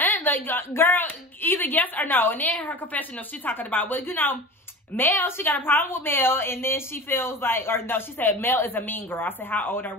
like, girl, either yes or no. And then her confessional, she's talking about, well, you know, Mel, she got a problem with Mel, and then she feels like, or no, she said Mel is a mean girl. I said, how old are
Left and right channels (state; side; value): normal; both; correlation 0.34